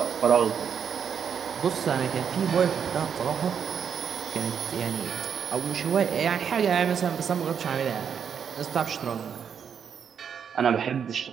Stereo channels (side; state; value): left; quieter; 7.5 dB